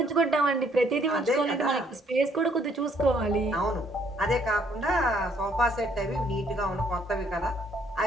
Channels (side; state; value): both; normal; correlation 0.65